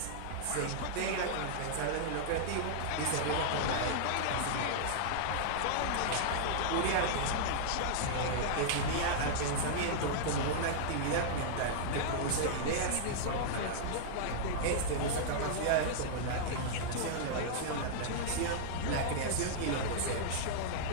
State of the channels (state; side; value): different; both; correlation -0.02